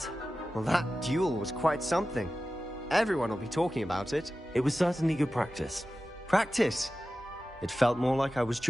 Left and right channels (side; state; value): both; normal; correlation 0.94